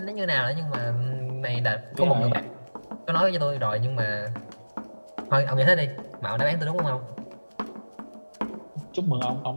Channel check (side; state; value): both; inverted; correlation -1.00